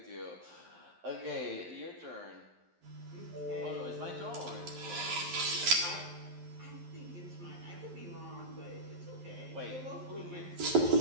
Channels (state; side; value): late; left; 11 ms